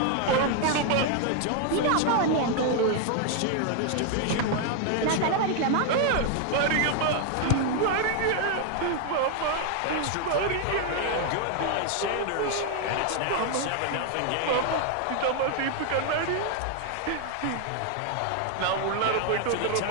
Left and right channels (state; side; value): different; both; correlation 0.00